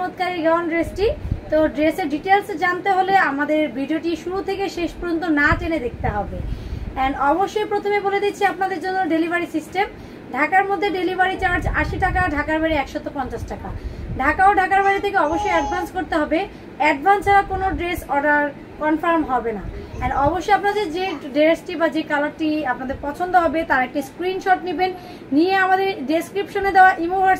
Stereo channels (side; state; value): both; identical; correlation 1.00